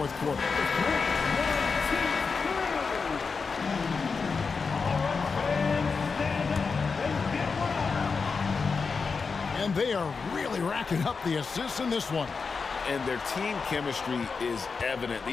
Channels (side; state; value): right; quieter; 4.9 dB